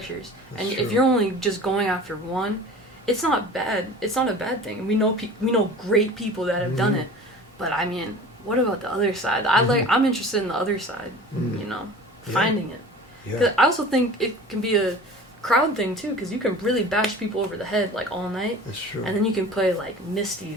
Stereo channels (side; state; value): both; normal; correlation 0.40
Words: that's and true. If you're only just going after one, it's not bad. It's not a bad thing. We know great people that have done it, but I mean, what about the other side? I'm interested in the other side. You know, finding it. Because I also think it can be a crowd thing too, because you can really bash people over the head like all night. That's true. And then you can play like